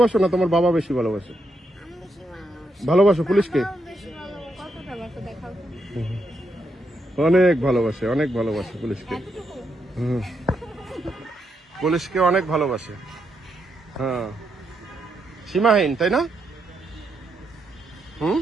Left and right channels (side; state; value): both; normal; correlation 0.80